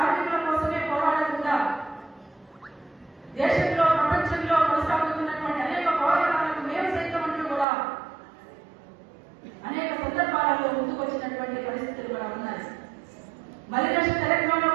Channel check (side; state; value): left; drops out; at 7.7 s